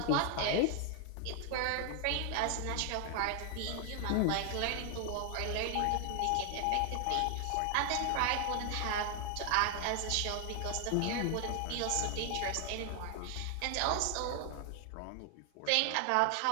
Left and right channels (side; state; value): both; different; correlation 0.00